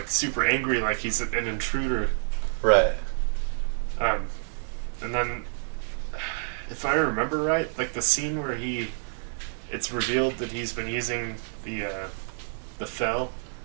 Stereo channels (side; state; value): left; silent; 59 dB below the other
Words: super angry, like he's an intruder. Right. And then, if I remember right, like the scene where it's revealed that he's been using the Fel,